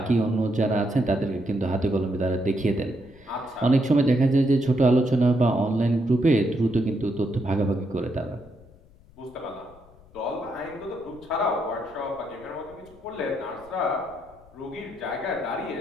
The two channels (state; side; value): noise; left; rumble, 25 dB below the sound